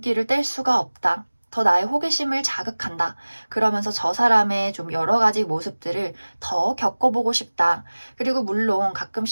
뗄 수가 없다. 더 나의 호기심을 자극한다. 그러면서 저 사람의 좀 여러 가지 모습들을 더 겪어보고 싶다. 그리고 물론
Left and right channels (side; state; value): both; inverted; correlation -1.00